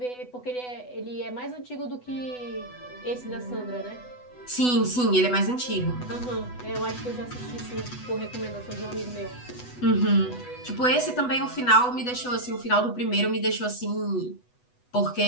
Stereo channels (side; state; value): right; late; 8.1 ms